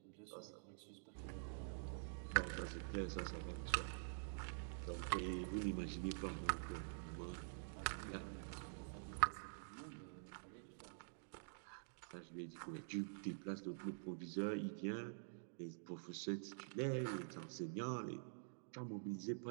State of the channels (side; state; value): left; silent; digital silence